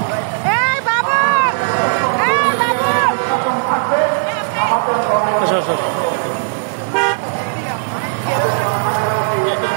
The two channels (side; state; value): left; silent; digital silence